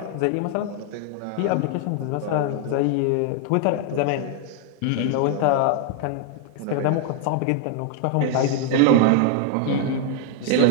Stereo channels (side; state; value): both; different; correlation 0.00